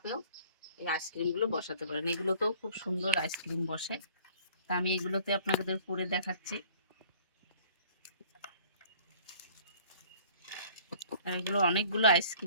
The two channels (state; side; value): inverted; both; correlation -0.51